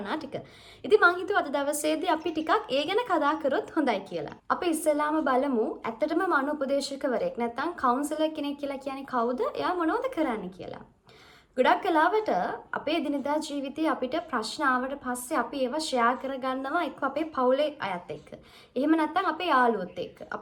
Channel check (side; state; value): both; identical; correlation 1.00